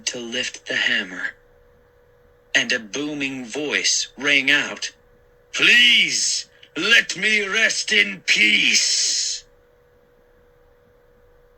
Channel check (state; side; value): identical; both; correlation 1.00